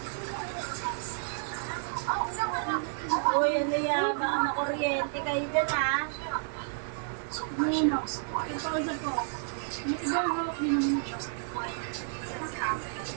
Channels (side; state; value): left; silent; digital silence